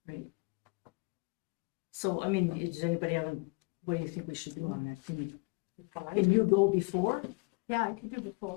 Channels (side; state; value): right; quieter; 30.0 dB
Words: So, does anybody have, what do you think we should do on that? Five. Can you go before? Yeah, I could do